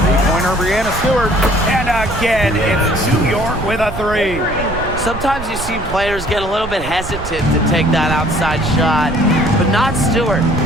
Three-pointer Brianna Stewart. And again, it's New York with a 3. Sometimes you see players get a little bit hesitant to take that outside shot, but not Stewart.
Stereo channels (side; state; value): right; noise; rumble, 10 dB below the sound